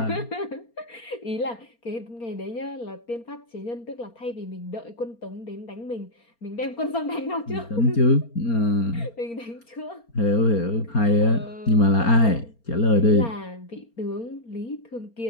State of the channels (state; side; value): late; right; 4.3 ms